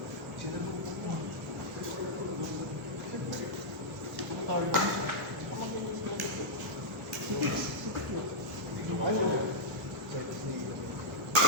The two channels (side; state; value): both; normal; correlation -0.09